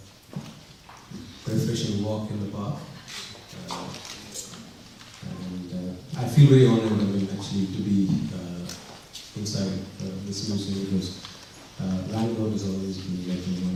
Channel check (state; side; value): identical; both; correlation 1.00